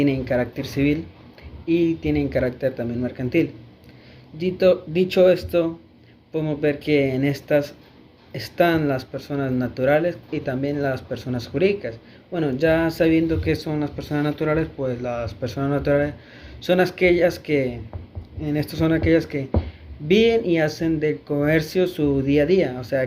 carácter civil y tienen carácter también mercantil. Dicho esto, podemos ver que en estas están las personas naturales y también las personas jurídicas. Bueno, ya sabiendo qué son las personas naturales, pues las personas naturales son aquellas que, son aquellas que viven y hacen del comercio su día a día, o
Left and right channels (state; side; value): identical; both; correlation 1.00